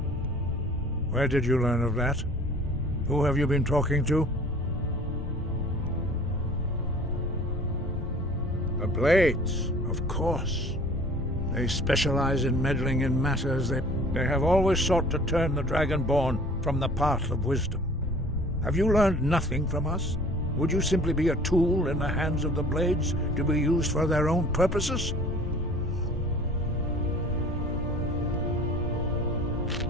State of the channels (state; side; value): noise; left; rumble, 9 dB below the sound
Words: Where did you learn of that? Who have you been talking to? The Blades, of course. They specialize in meddling in matters. They have always sought to turn the Dragonborn from the path of wisdom. Have you learned nothing from us? Would you simply be a tool in the hands of the Blades to be used for their own purposes?